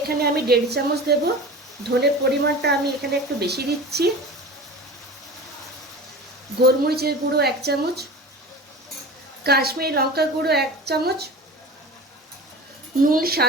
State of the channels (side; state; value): both; normal; correlation 0.34